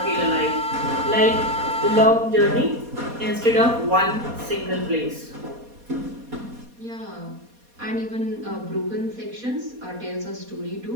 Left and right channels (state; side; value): late; left; 4.2 ms